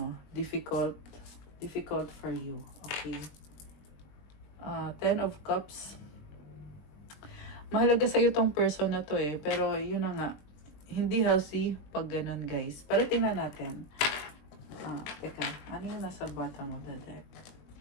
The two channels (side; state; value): right; late; 20 ms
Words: difficult for you. Okay. Ten of Cups. Mahalaga sa'yo tong person na to pero yun na nga, hindi healthy pag ganun guys. Pero tingnan natin. Teka, ano yung nasa bottom of the deck?